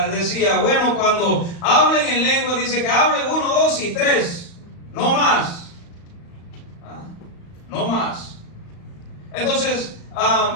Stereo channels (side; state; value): right; late; 35 ms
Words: bueno, cuando hablen en lengua, dice que hablen 1, 2 y 3, no más. No más. Entonces,